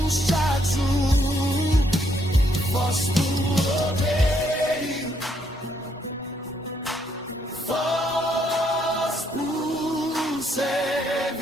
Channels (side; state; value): both; normal; correlation 0.73